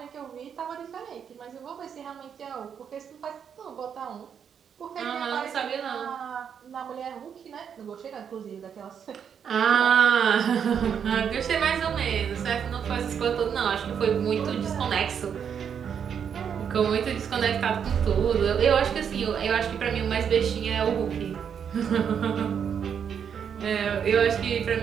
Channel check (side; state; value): left; quieter; 7.7 dB